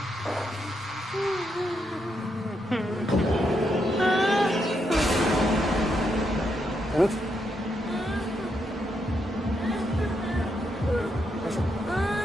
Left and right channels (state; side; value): normal; both; correlation 0.80